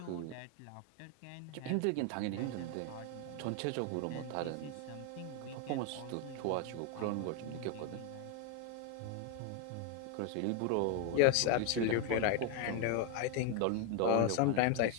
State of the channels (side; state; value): both; different; correlation 0.01